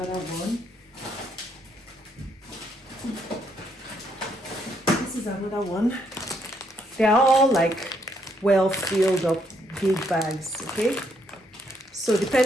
one. This is another one. They're all like well filled up big bags, okay? So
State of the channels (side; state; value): both; normal; correlation 0.73